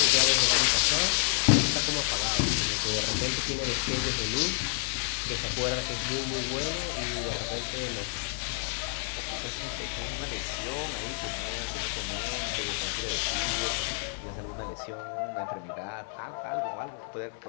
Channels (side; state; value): right; silent; 58 dB below the other